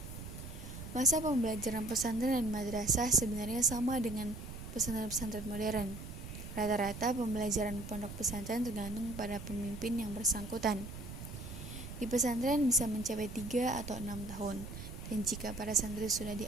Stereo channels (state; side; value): noise; right; rumble, 10 dB below the sound